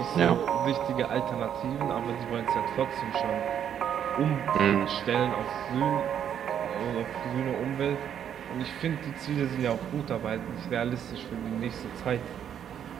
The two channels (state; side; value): quieter; left; 9.1 dB